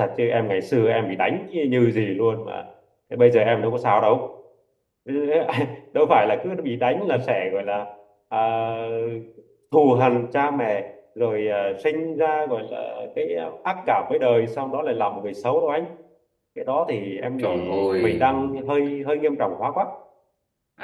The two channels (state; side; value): identical; both; correlation 1.00